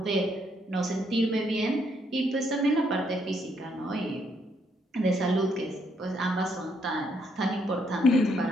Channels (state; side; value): normal; both; correlation 0.73